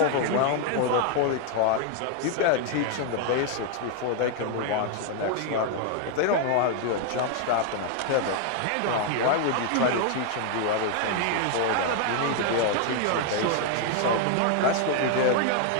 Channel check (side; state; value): both; different; correlation 0.00